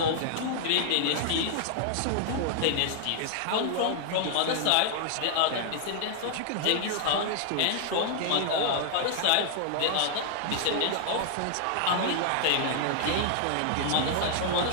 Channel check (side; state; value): both; different; correlation 0.00